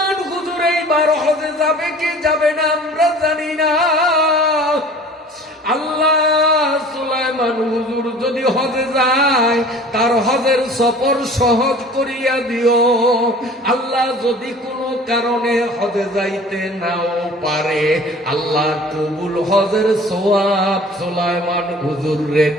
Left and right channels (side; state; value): both; normal; correlation 0.46